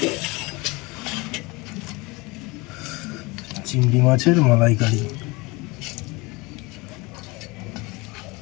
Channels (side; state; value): right; quieter; 24.9 dB